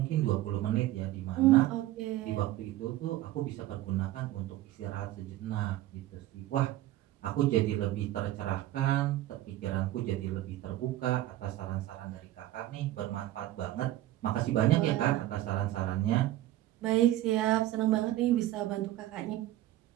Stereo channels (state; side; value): quieter; left; 15.0 dB